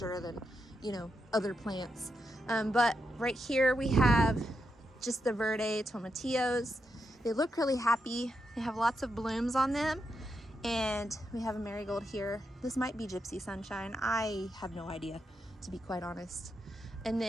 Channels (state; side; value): normal; both; correlation 0.84